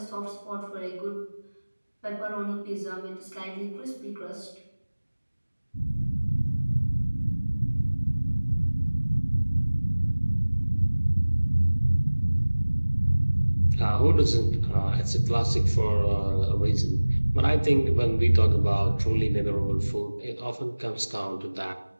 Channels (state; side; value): inverted; both; correlation -1.00